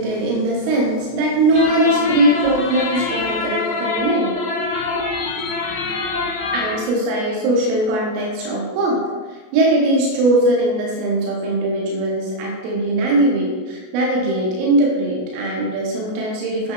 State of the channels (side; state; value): left; late; 33 ms